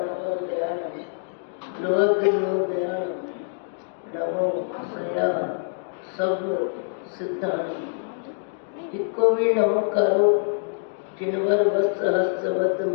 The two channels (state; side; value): silent; right; digital silence